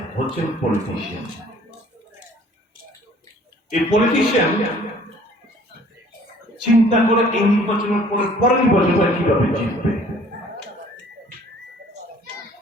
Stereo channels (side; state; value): both; normal; correlation 0.55